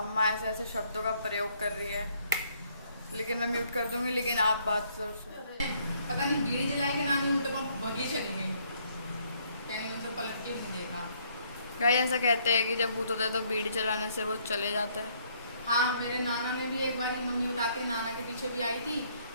ऐसे ऐसे शब्दों का प्रयोग कर रही है, लेकिन मैं म्यूट कर दूंगी। लेकिन आप बात सर पता नहीं बीड़ी जलाई के नानी उल्टे पर भगी चली गई, कहीं उनको पलट के नहीं देखा। गाय ऐसा कहते हैं कि जब भूत होता है तो बीड़ी चलाने से वो चले जाता है। हाँ मेरे नाना ने भी एक बार मम्मी उठाते नाना के पीछे भी आई थी,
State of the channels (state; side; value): inverted; both; correlation -0.67